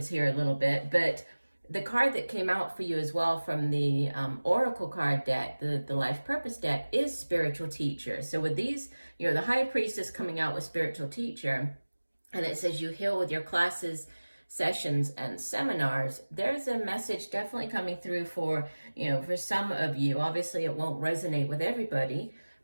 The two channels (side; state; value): both; inverted; correlation -1.00